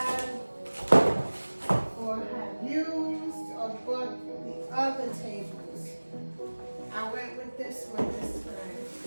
used or bought the other tables. I went with this one this time.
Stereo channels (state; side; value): inverted; both; correlation -1.00